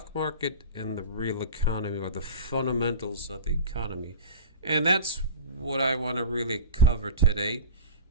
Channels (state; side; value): inverted; both; correlation -0.31